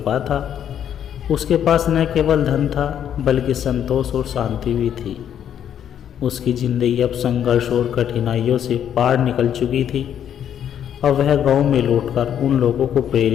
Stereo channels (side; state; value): right; quieter; 9.5 dB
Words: था। उसके पास न केवल धन था, बल्कि संतोष और शांति भी थी। उसकी ज़िंदगी अब संघर्ष और कठिनाइयों से पार निकल चुकी थी। अब वह गांव में लौटकर उन लोगों को